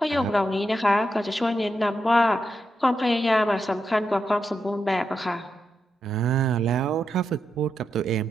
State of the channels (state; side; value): normal; both; correlation 0.85